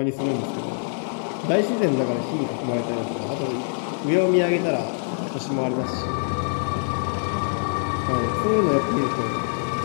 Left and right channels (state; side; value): silent; right; digital silence